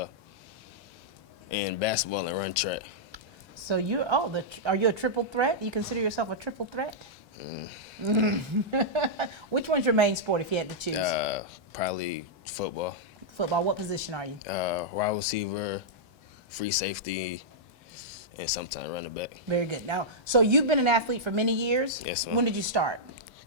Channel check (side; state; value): both; normal; correlation -0.09